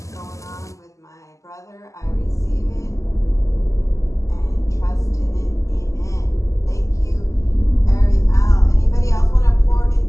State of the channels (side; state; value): right; late; 0.16 ms